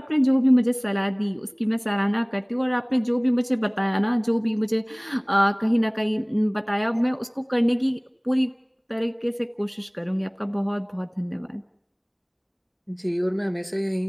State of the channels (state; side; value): identical; both; correlation 1.00